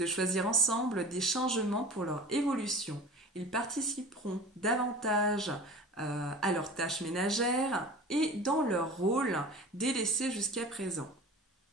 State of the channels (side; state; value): both; normal; correlation 0.37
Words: choisir ensemble des changements pour leur évolution. Ils participeront davantage à leurs tâches ménagères et dans leur rôle délaissé jusqu'à présent.